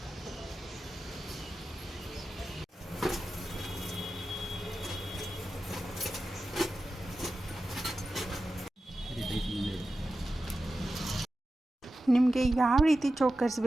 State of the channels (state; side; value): normal; both; correlation 0.92